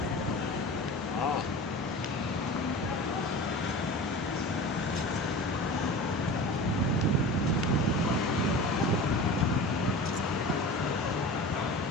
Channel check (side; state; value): both; normal; correlation 0.34